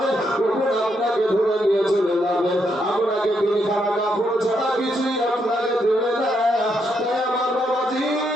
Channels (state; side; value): normal; both; correlation 0.78